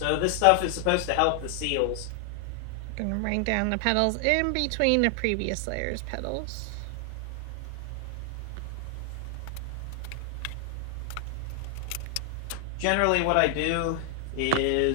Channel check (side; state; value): both; different; correlation 0.00